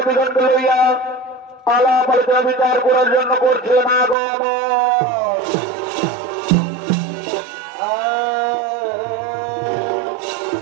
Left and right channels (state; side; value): drops out; left; at 4.2 s